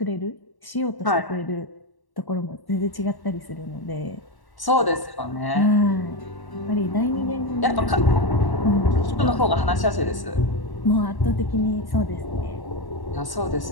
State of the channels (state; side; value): late; right; 1.1 ms